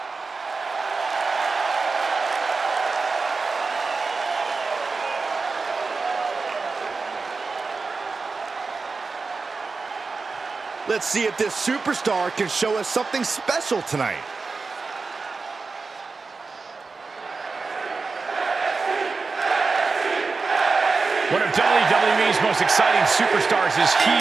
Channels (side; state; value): left; quieter; 4.3 dB